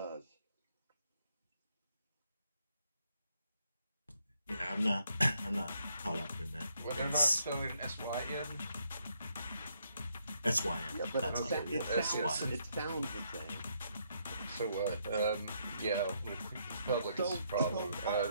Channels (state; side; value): inverted; both; correlation -0.74